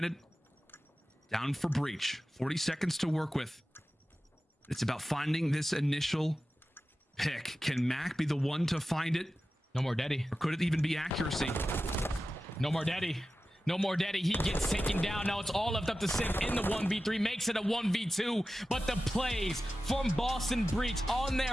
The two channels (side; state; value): both; normal; correlation 0.94